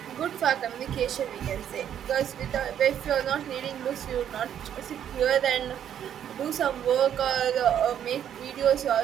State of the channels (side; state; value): left; quieter; 9.7 dB